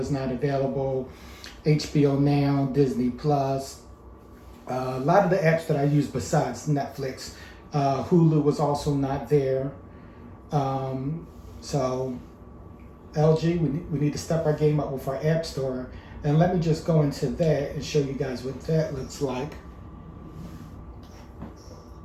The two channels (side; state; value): both; identical; correlation 1.00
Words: not available, HBO Now, Disney Plus, a lot of the apps that I use besides Netflix. Hulu was also not there. So LG, we need to step our game up with our app store. And let me just go into that and show you guys what that looks like.